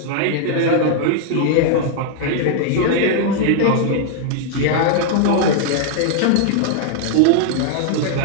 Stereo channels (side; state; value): both; different; correlation 0.00